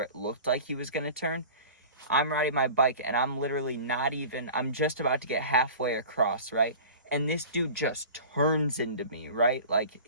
it looked like he was going to turn. I'm riding my bike, and I'm literally I'm just about to get halfway across, right? And this dude just turns into me, right?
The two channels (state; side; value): inverted; both; correlation -0.39